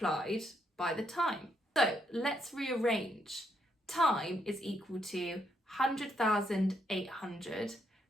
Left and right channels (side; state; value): both; normal; correlation 0.76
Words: by the time. So let's rearrange. Time is equal to 100,800